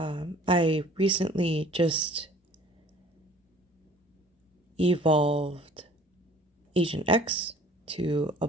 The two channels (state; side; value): normal; both; correlation 0.50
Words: recently just evolved Agent X to